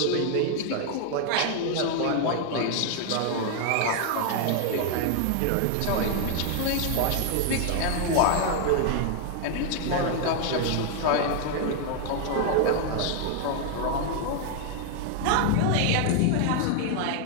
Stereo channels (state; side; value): different; both; correlation 0.00